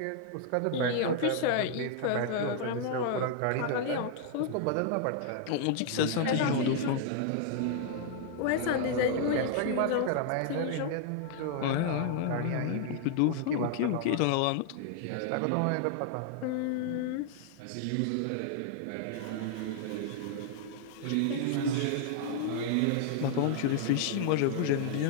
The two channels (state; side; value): different; both; correlation -0.01